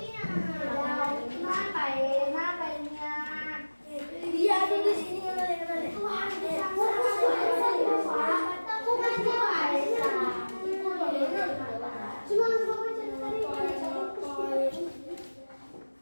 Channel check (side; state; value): both; inverted; correlation -1.00